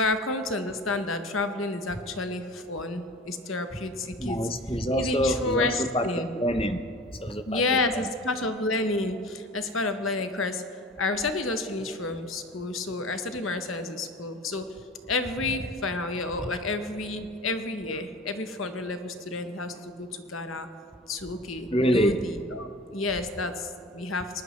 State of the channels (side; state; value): both; normal; correlation 0.38